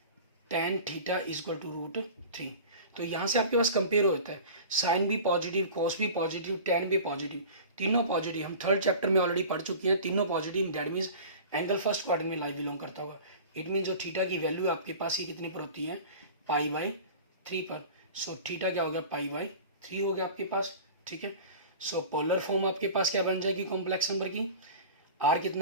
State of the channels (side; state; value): both; inverted; correlation -0.38